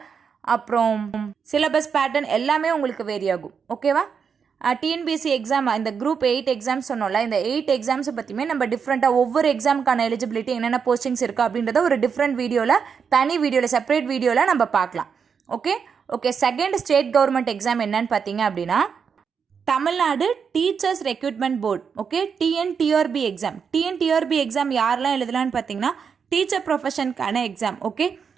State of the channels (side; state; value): left; quieter; 6.4 dB